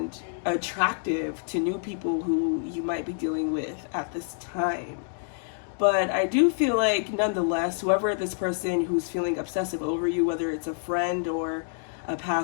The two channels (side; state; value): right; silent; digital silence